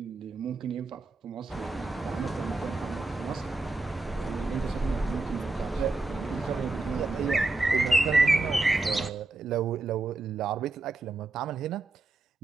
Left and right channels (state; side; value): quieter; left; 3.3 dB